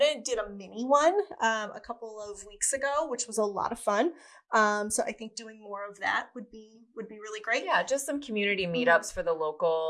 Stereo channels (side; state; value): both; identical; correlation 1.00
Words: of did a mini one a couple of weeks ago, which was a lot of fun. So I think doing more of that would be really great. Yeah, just some community meetups for the